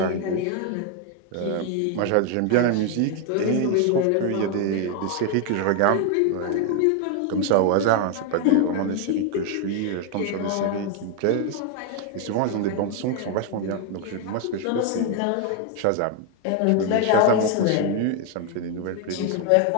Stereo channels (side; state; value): both; different; correlation 0.01